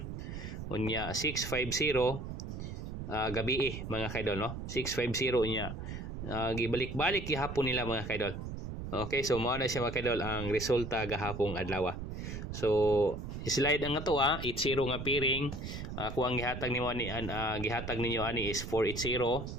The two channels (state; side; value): noise; right; rumble, 7 dB below the sound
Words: Unya 650 gabi mga kaidol, no? 650 niya. Gibalik-balik gihapon nila mga kaidol. Okay, so mao na siya mga kaidol ang resulta gahapong adlaw. So slide ang ato 80 nga piring. Kung ang gihatag nimo ani gihatag ninyo ani is 480.